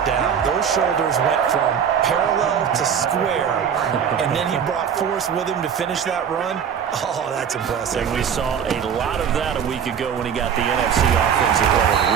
down. Those shoulders went from parallel to square, and then he brought force with him to finish that run. Oh, that's impressive. And we saw a lot of that a week ago when he got the NFC Offensive Player of the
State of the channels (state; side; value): quieter; left; 7.8 dB